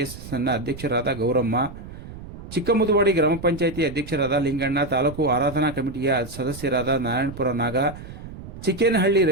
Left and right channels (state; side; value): noise; right; rumble, 13 dB below the sound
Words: ಅಧ್ಯಕ್ಷರಾದ ಗೌರಮ್ಮ, ಚಿಕ್ಕಮುದುವಾಡಿ ಗ್ರಾಮ ಪಂಚಾಯಿತಿ ಅಧ್ಯಕ್ಷರಾದ ಲಿಂಗಣ್ಣ, ತಾಲೂಕು ಆರಾಧನಾ ಕಮಿಟಿಯ ಸದಸ್ಯರಾದ ನಾರಾಯಣಪುರ ನಾಗ, ಚಿಕ್ಕೇನಹಳ್ಳಿ